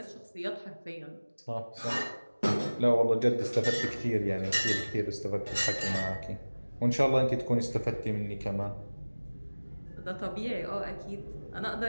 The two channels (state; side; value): inverted; both; correlation -1.00